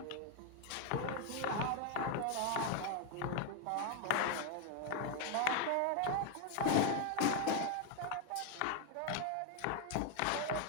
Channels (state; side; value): different; both; correlation 0.00